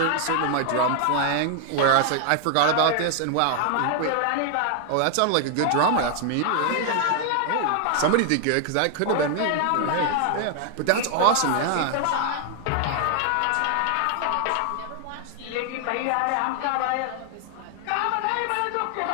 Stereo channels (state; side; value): different; both; correlation 0.00